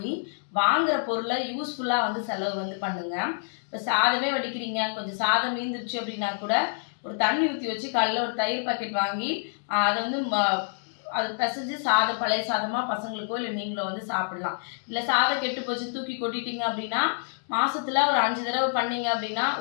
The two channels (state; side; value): silent; right; digital silence